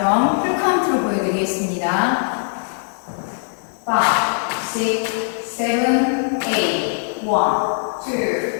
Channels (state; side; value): silent; right; 64 dB below the other